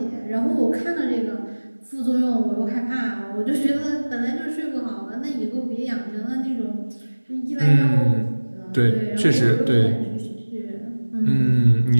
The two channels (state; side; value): inverted; both; correlation -1.00